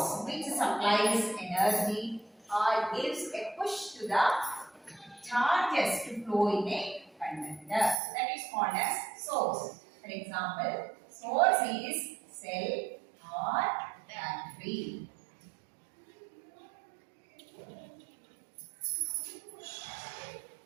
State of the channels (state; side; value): drops out; left; at 8.0 s